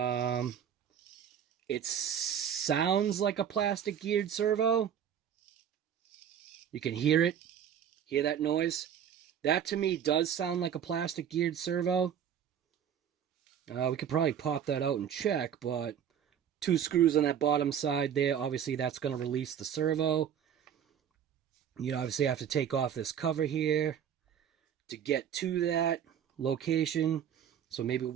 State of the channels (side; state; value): left; quieter; 8.8 dB